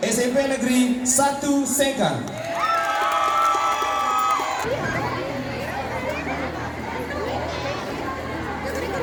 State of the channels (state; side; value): identical; both; correlation 1.00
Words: SMP Negeri 1 Sekang.